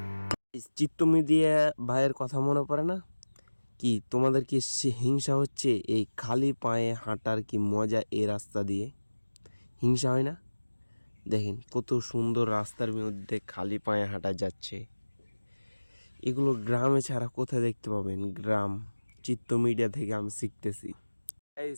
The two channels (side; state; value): both; inverted; correlation -1.00